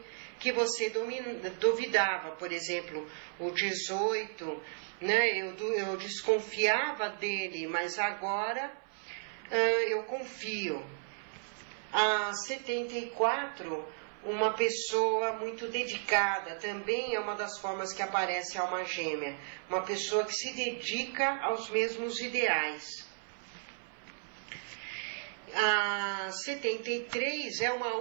que você duvidava. Por exemplo, o 18, né, eu desconfiava dele, mas agora eu confio. A 74, uma pessoa muito dedicada, também é uma das formas que aparece a alma gêmea. Uma pessoa que se dedica aos mesmos ideais. A 73 é uma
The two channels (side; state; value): left; silent; 55 dB below the other